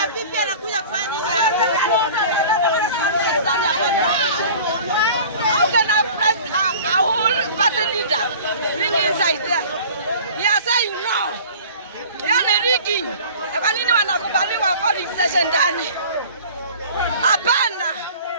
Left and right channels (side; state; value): both; inverted; correlation -0.44